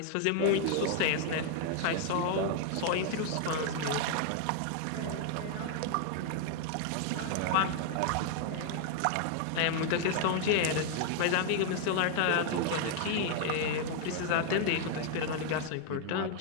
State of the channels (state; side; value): different; both; correlation 0.00